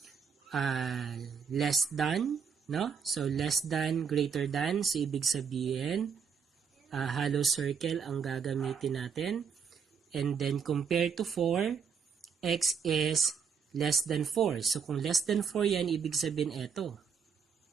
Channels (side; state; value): left; quieter; 6.5 dB